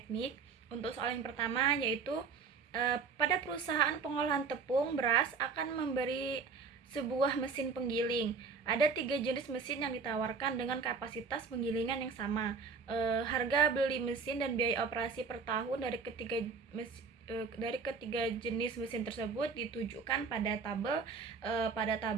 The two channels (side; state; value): left; quieter; 5.1 dB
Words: Untuk soal yang pertama yaitu pada perusahaan pengolahan tepung beras akan memberi sebuah mesin penggiling. Ada 3 jenis mesin yang ditawarkan dengan kapasitas penggilingan yang sama. Harga beli mesin dan biaya operasi per tahun dari ketiga jenis mesin tersebut ditujukan pada tabel